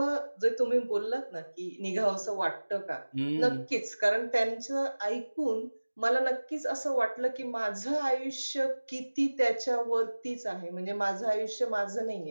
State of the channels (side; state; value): both; inverted; correlation -1.00